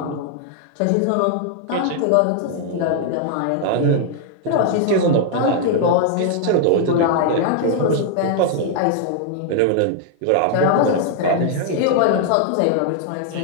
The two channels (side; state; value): both; different; correlation 0.00